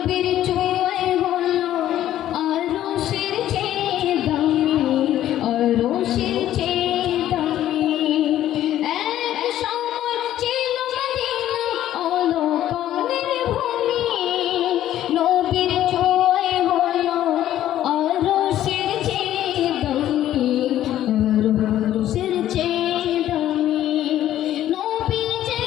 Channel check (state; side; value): quieter; right; 12.4 dB